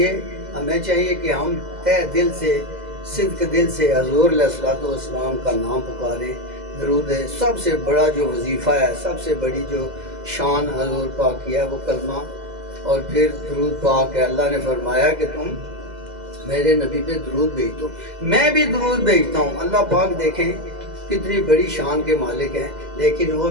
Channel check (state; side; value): late; left; 2.0 ms